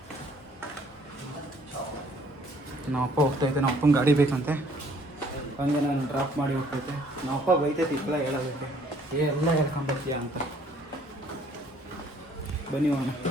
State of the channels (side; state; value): both; normal; correlation 0.60